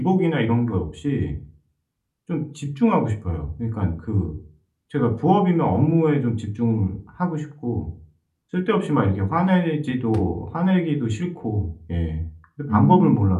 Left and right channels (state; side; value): identical; both; correlation 1.00